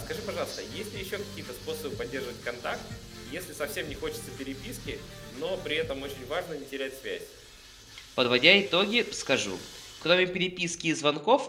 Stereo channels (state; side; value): identical; both; correlation 1.00